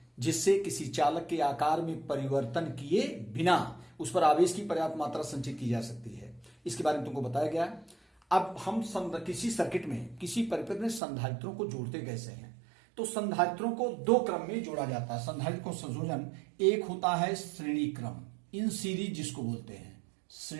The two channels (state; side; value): drops out; left; at 11.0 s